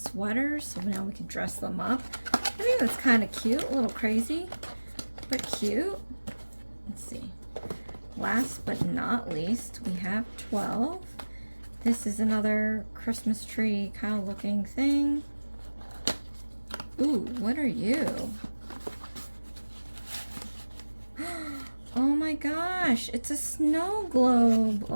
so now we can dress them up. I think that's kind of cute, a little crazy, but cute. Let's see. Last but not least, we have 12. This is another Christmas tree kind of looking thing. Ooh, what are you? Oh my gosh, it's a snow globe.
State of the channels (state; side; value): inverted; both; correlation -1.00